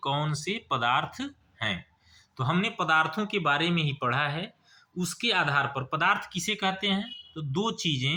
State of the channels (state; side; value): identical; both; correlation 1.00